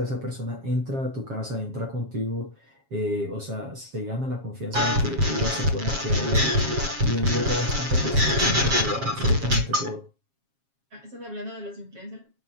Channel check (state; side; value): late; left; 7.4 ms